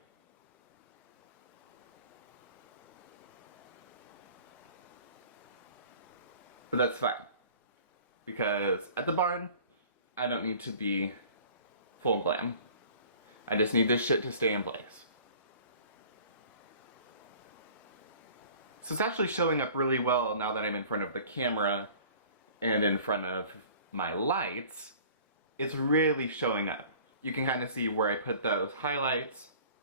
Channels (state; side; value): inverted; both; correlation -0.47